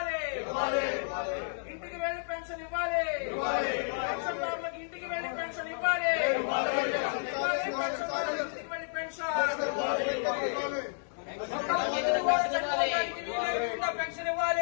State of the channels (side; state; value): right; silent; digital silence